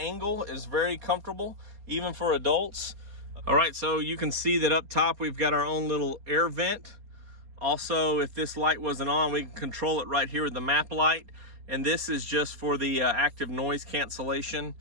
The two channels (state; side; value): late; left; 4.2 ms